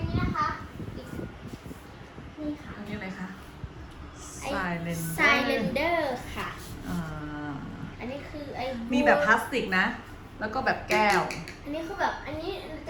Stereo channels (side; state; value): both; identical; correlation 1.00